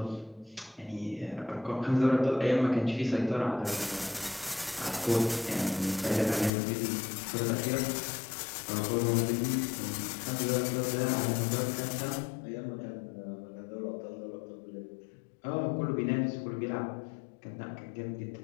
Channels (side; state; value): right; drops out; at 6.5 s